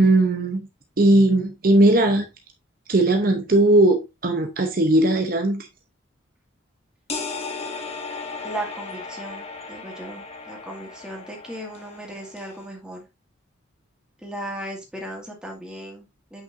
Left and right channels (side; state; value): both; normal; correlation 0.56